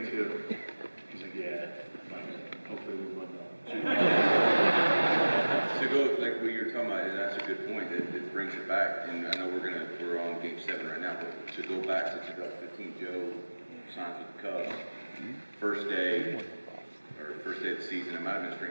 too. He's like, yeah. I'm like, hopefully we win though. To go like what you're talking about, and that's a good point. It brings it back, and I know we're on Game 7 right now, but to go back to 2015, Joe signs with the Cubs. First day of the season. It might have been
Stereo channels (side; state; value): both; inverted; correlation -1.00